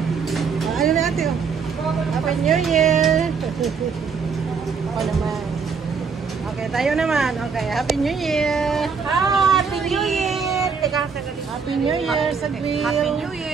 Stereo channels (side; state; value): left; quieter; 5.6 dB